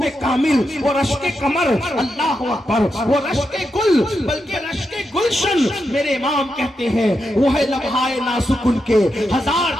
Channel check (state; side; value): normal; both; correlation 0.86